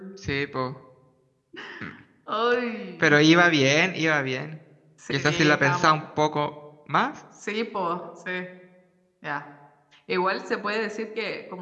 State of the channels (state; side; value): identical; both; correlation 1.00